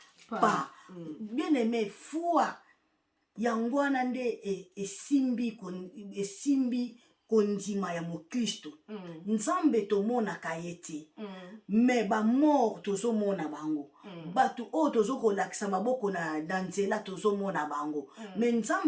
pas. Bien aimé, foi yangwana nde esimbi kondima ya mokristo. Nzambe tomonaka ye te, me bamort tozomona bango. Bato oyo tozokolakisa maboko na nzela tozomona bango, me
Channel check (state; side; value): identical; both; correlation 1.00